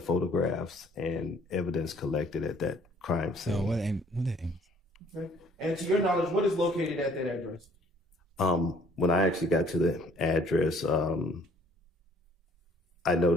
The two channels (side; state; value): both; normal; correlation 0.59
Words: photographs and evidence collected at that crime scene. So what aim? Okay. And to your knowledge, what is located at that address? When I actually got to the address, I